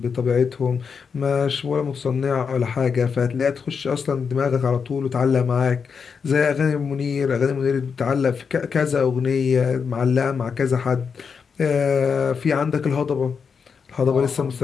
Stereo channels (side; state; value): right; quieter; 6.0 dB